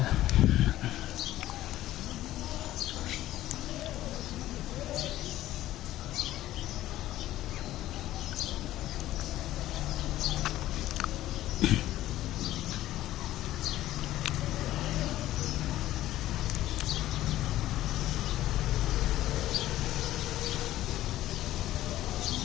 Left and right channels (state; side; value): quieter; right; 14.5 dB